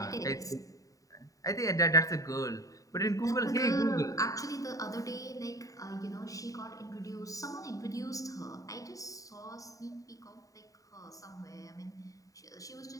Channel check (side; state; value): right; late; 0.16 ms